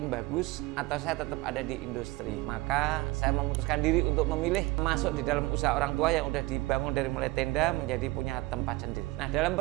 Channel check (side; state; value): left; quieter; 21.5 dB